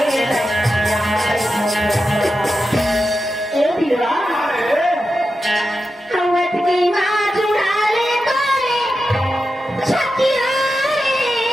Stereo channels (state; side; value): normal; both; correlation 0.90